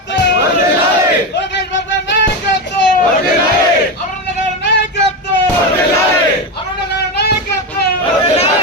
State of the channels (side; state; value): both; normal; correlation 0.15